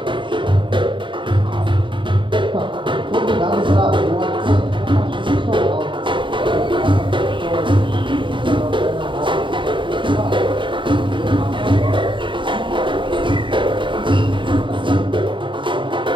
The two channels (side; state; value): left; late; 0.24 ms